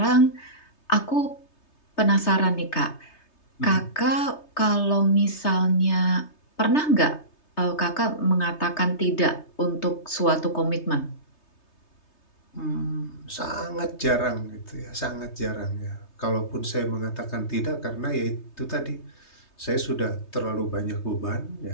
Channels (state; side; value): late; right; 3.3 ms